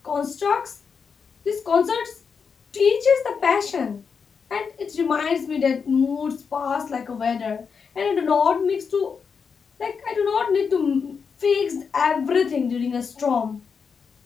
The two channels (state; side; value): quieter; right; 5.9 dB